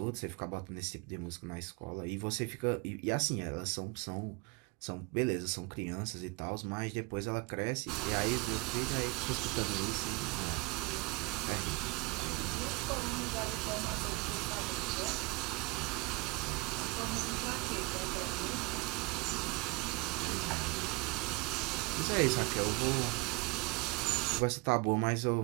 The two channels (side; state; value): left; quieter; 26.3 dB